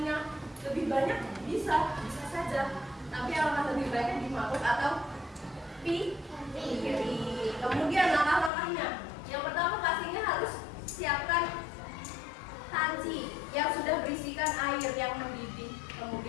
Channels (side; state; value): right; drops out; at 8.5 s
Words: lebih banyak bisa saja. Tapi alangkah lebih baiknya di mangkuk atau piring. Kemudian langkah-langkahnya. Yang pertama pastinya harus siapkan panci yang sudah berisikan air yang mendidih.